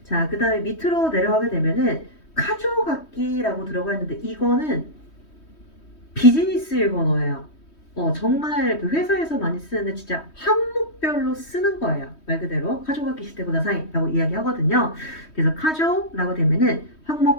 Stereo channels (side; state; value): right; late; 3.1 ms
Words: 자, 그 다음에 밑으로 내려가게 되면은 카조각기라고 들어가 있는데 이거는 비즈니스 일본어예요. 정말 그 회사에서 많이 쓰는데 진짜 항목별로 쓰는 거예요. 말 그대로 카조가키 시대고 나사이라고 이야기하거든요. 그래서 카조라고 되면은